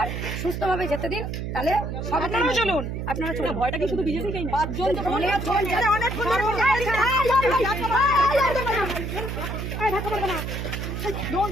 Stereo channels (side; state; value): right; noise; hum, 4 dB below the sound